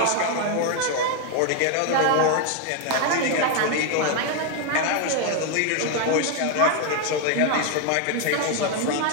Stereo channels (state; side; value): different; both; correlation 0.01